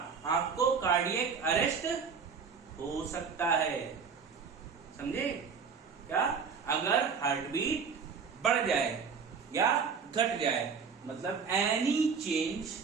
आपको कार्डियक अरेस्ट हो सकता है। समझे क्या, अगर हार्ट बीट बढ़ जाए या घट जाए, मतलब any change,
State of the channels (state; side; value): quieter; left; 5.8 dB